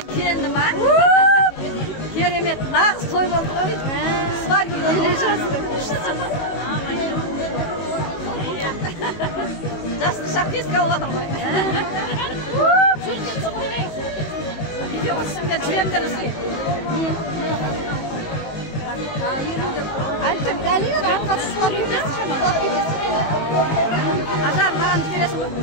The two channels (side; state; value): right; late; 19 ms